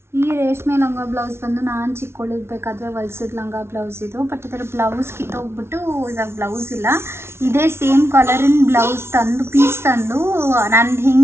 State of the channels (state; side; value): late; left; 0.12 ms